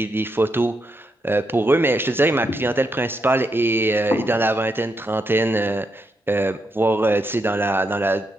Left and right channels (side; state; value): both; normal; correlation 0.81